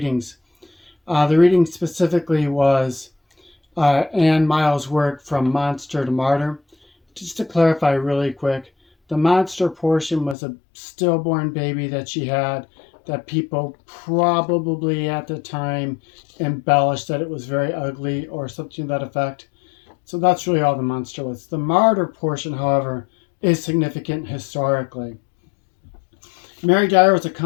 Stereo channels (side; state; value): right; drops out; at 10.4 s